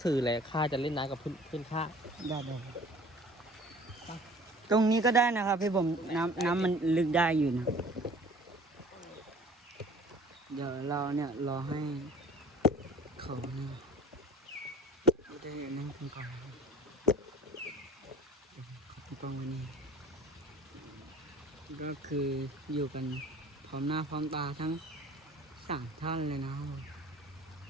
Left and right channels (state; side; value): normal; both; correlation 0.48